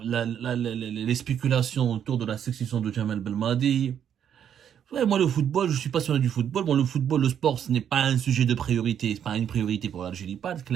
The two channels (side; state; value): left; quieter; 9.0 dB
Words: spéculations autour de la succession de Jamel Belmadi. Ouais, moi, le football, je suis passionné du football. Bon, le football, le sport, ce n'est pas un sujet de priorité. C'est pas une priorité pour l'Algérie, pas